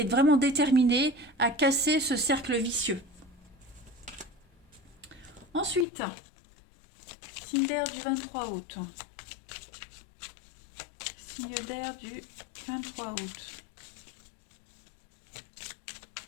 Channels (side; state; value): right; drops out; at 5.9 s